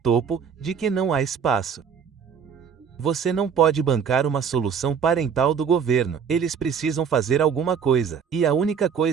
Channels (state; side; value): quieter; left; 7.0 dB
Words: de que não há espaço. Você não pode bancar uma solução parental do governo. Eles precisam fazer alguma coisa. E a única